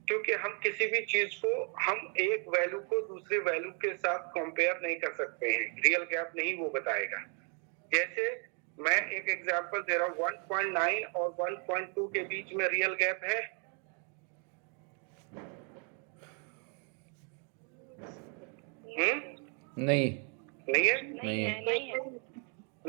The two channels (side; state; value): left; quieter; 39.3 dB